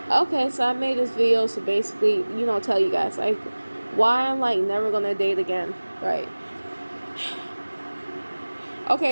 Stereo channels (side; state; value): both; inverted; correlation -1.00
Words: Okay, so I made this video to basically, tell you guys like why I'm like never gonna date again, right?